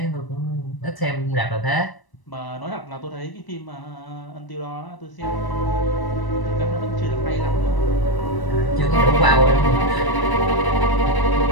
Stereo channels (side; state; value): right; late; 1.0 ms